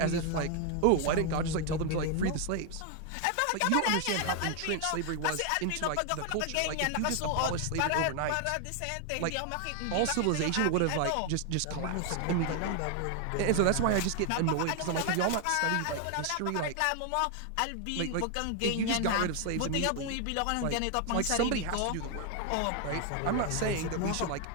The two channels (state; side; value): different; both; correlation 0.00